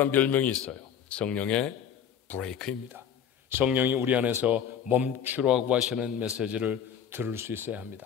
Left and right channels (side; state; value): right; quieter; 8.5 dB